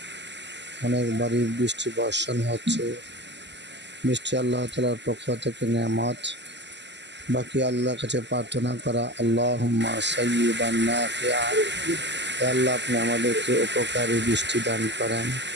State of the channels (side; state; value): left; late; 0.51 ms